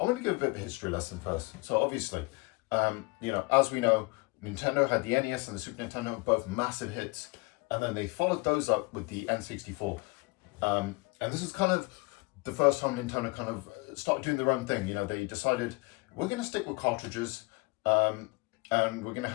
want to give a bit of a history lesson first. So obviously, as we know, Nintendo had the NES and the Super Nintendo, both massive hits, and then they followed those up with the N64. And this is kind of the first time Nintendo kind of started doing their own thing. They decided we're going to stick with cartridges, and we're going to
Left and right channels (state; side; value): quieter; right; 26.3 dB